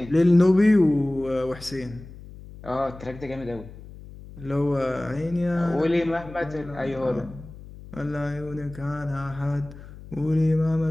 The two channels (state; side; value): noise; left; hum, 16 dB below the sound